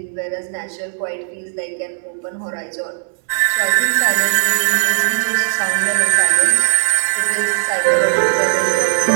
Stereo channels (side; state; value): left; silent; 68 dB below the other